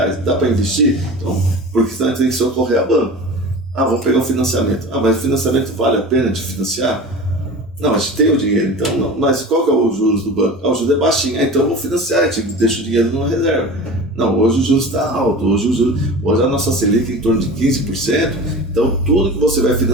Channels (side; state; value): both; normal; correlation 0.34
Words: dá para investir? Então, porque senão a gente tem que socorrer a banco. Vamos pegar um financiamento. Mas o financiamento vale a pena de financiar? Não, a gente tem o dinheiro, então não. Mas qual que é o juros do banco? O juros é baixinho, então vamos financiar, a gente deixa o dinheiro numa reserva. Não, hoje o juros está alto, hoje a nossa Selic é em torno de 15%, então tudo que você vai